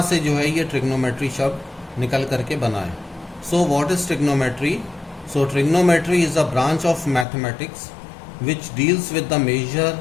से जो है ये ट्रिग्नोमेट्री शब्द निकल करके बना है। So what is trigonometry? So trigonometry is a branch of mathematics which deals with the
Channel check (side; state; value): right; drops out; at 7.2 s